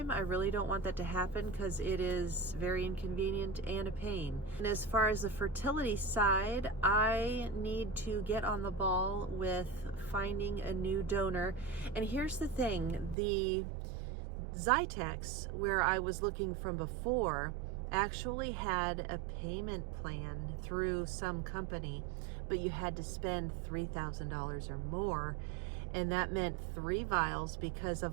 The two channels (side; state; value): left; drops out; at 13.2 s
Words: I really don't want that to happen, because it is very inconvenient and a pain. And as far as the fertility side, I need to get on the ball with finding a new donor. And here's the thing, the Zytex, where I was looking from before, actually had a payment plan through some company, but you had to spend $3,000 or more, and that meant 3 vials, because a